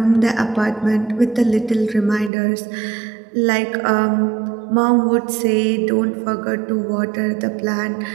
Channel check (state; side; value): drops out; left; at 2.3 s